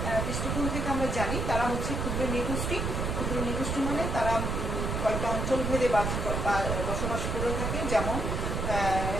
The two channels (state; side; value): noise; right; rumble, 1 dB below the sound